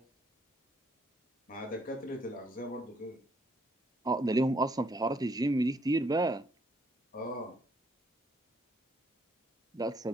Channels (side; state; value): both; normal; correlation 0.70